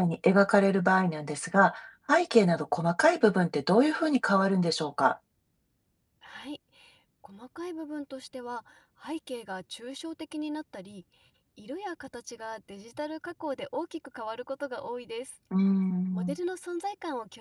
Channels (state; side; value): identical; both; correlation 1.00